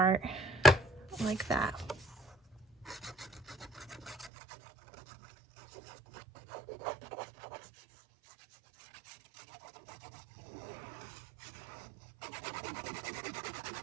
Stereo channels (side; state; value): left; drops out; at 4.3 s